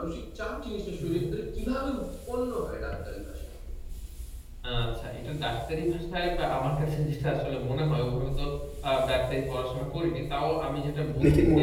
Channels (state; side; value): identical; both; correlation 1.00